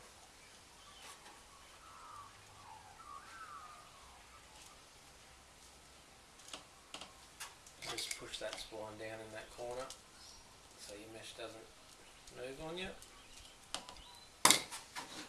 Just push that spline down in that corner so your mesh doesn't move on you.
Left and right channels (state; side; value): identical; both; correlation 1.00